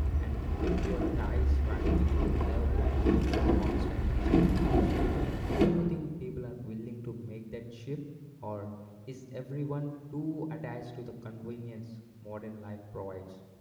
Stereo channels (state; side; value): identical; both; correlation 1.00